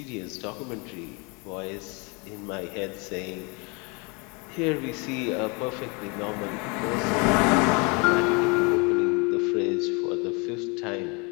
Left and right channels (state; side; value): quieter; right; 30.8 dB